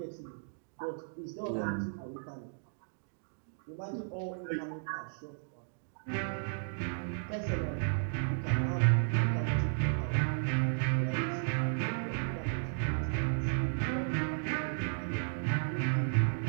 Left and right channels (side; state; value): left; silent; digital silence